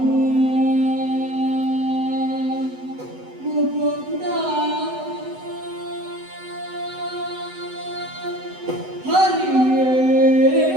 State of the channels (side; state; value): left; late; 8.0 ms